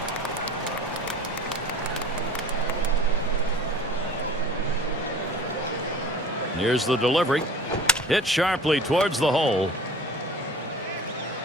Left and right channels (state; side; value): normal; both; correlation 0.43